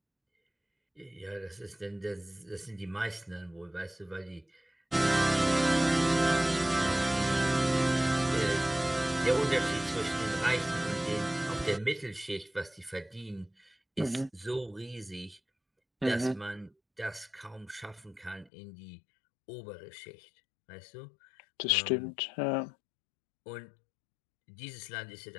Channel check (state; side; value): drops out; right; at 18.5 s